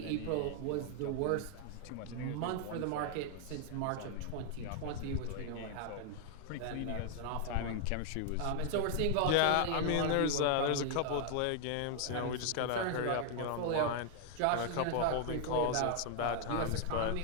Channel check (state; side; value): different; both; correlation 0.00